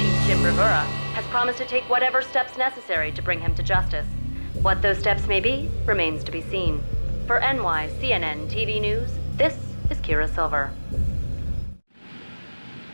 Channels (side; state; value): both; inverted; correlation -1.00